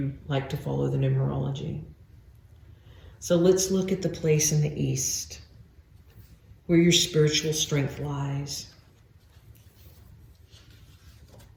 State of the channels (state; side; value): identical; both; correlation 1.00